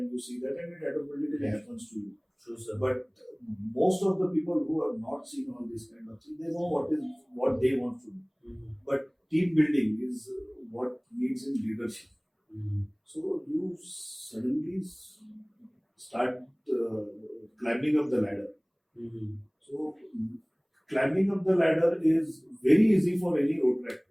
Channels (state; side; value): identical; both; correlation 1.00